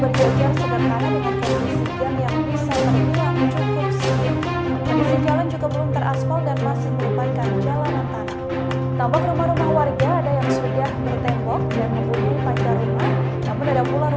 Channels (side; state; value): both; identical; correlation 1.00